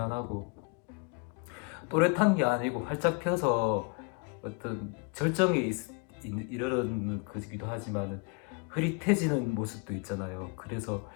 또렷한 게 아니고 활짝 펴서 어떤 절정에 이르는 거기도 하지만 흐릿해지는 모습도 있잖아요. 그래서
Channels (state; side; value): quieter; right; 32.2 dB